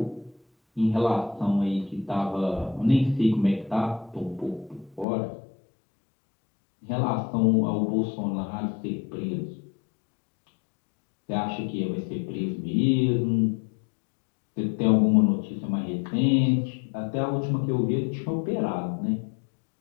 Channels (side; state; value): right; drops out; at 5.1 s